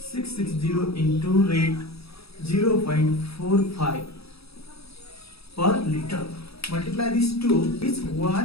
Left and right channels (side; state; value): right; late; 0.77 ms